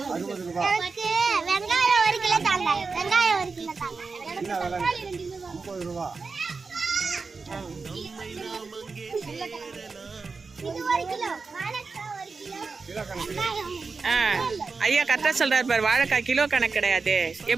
வெங்காயம் 1 கிலோ தாங்க. வெங்காயம் 1 கிலோ தாங்க. 50 ரூபா. இது 1 கிலோ. வாழைக்காய் 1 கிலோ. ஐயா கரெக்டா சொல்றாரு பாரு. வாழைக்காய் கிலோ கணக்கு கிடையாது.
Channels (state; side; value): quieter; left; 4.5 dB